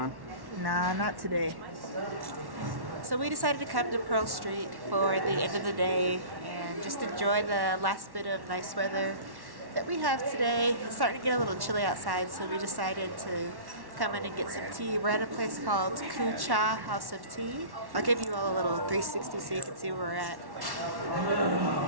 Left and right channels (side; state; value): left; late; 1.1 ms